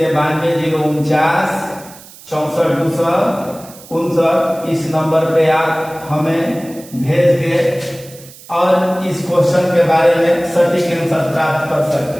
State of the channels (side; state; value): right; noise; hiss, 20 dB below the sound